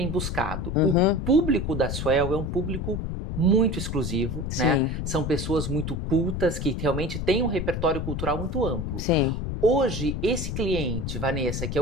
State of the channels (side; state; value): left; noise; rumble, 3 dB below the sound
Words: buscado. O público da Suel é um público muito exclusivo, né? São pessoas muito cultas, que realmente têm um repertório cultural muito amplo. Sim. Hoje, esse cliente, Vanessa, que é